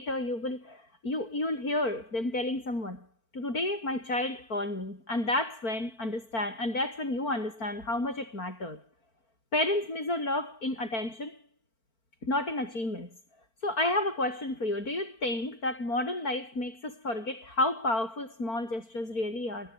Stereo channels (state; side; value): late; right; 4.4 ms